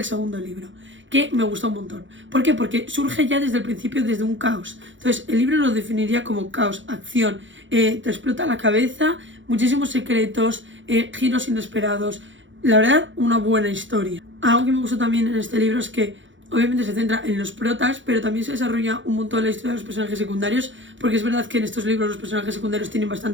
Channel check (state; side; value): late; left; 0.55 ms